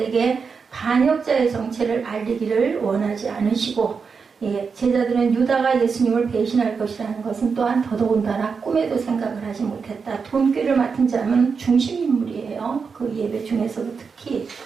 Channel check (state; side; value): quieter; left; 5.5 dB